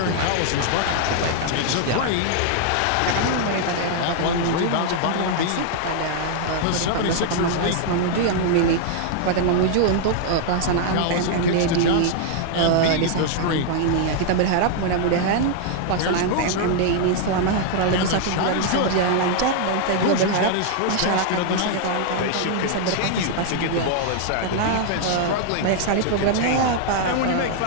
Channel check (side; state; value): both; different; correlation -0.01